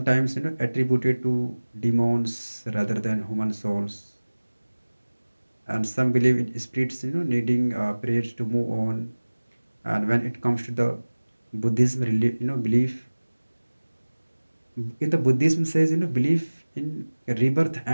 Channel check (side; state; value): both; inverted; correlation -1.00